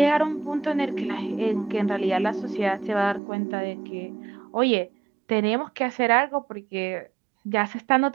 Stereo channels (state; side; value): drops out; left; at 3.2 s